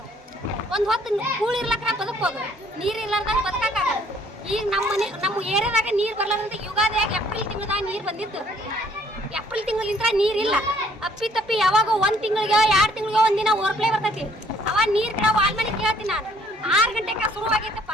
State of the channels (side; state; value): both; normal; correlation 0.62